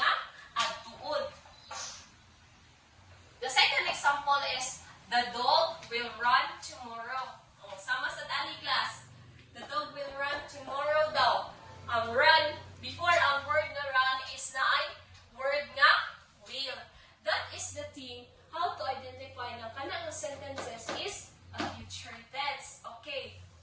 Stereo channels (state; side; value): identical; both; correlation 1.00